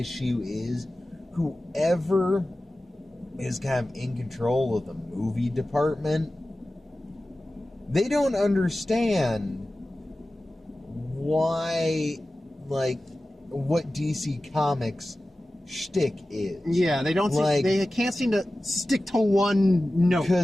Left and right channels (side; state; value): both; normal; correlation 0.95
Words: is whoever is kind of in control of the movie department, they don't understand why, like, what DC Comics shtick is. Yeah, they don't. They can't seem to stick to one note.